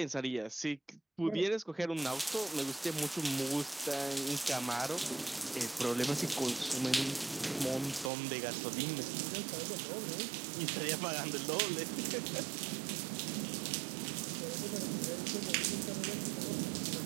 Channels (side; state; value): left; drops out; at 8.1 s